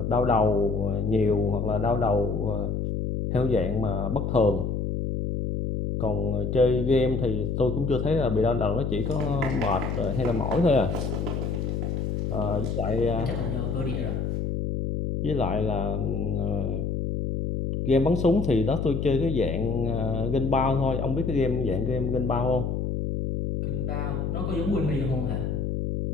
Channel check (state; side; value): noise; left; hum, 1 dB below the sound